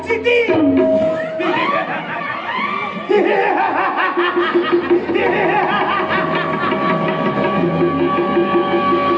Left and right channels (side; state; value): both; identical; correlation 1.00